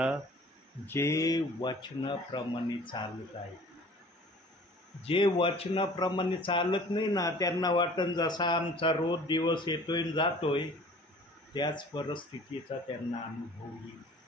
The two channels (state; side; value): normal; both; correlation 0.48